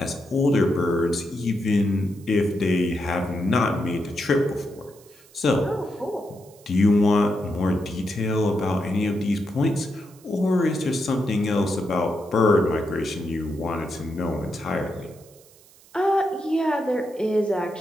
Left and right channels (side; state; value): right; noise; hiss, 26 dB below the sound